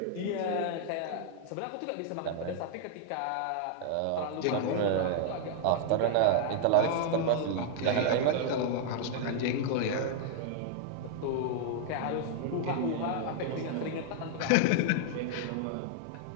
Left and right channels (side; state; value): both; different; correlation 0.00